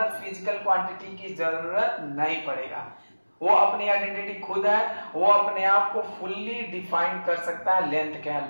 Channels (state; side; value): inverted; both; correlation -1.00